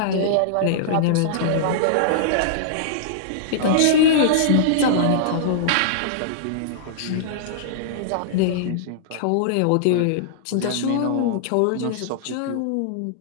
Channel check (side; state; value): both; different; correlation -0.02